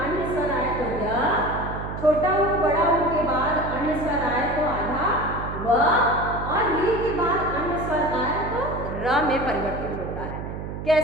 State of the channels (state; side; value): noise; right; hum, 7 dB below the sound